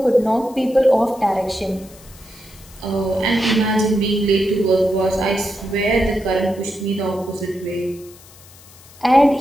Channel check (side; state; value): left; noise; hiss, 23 dB below the sound